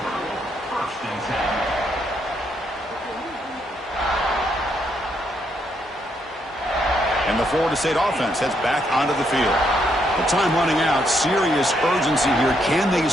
And the Florida State offense heads back onto the field. The time running out. Serious urgency here. Can they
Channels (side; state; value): both; normal; correlation 0.75